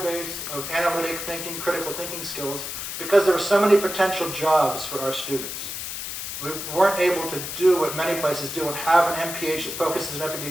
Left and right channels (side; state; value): left; noise; hiss, 6 dB below the sound